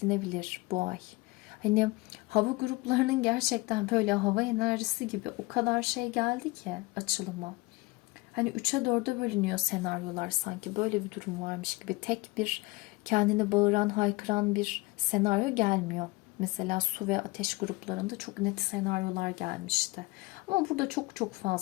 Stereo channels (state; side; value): quieter; right; 22.5 dB